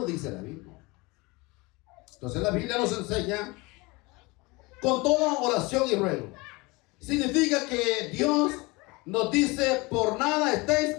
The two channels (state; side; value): quieter; right; 24.7 dB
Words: dice la Biblia. Entonces la Biblia nos enseña con toda oración y ruego. Significa que Dios nos dice, por nada estéis